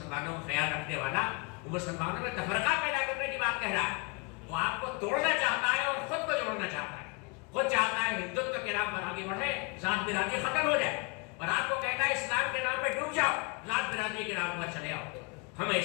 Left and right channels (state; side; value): quieter; right; 31.8 dB